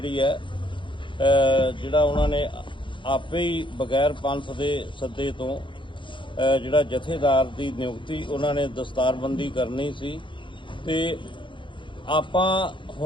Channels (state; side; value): late; right; 0.24 ms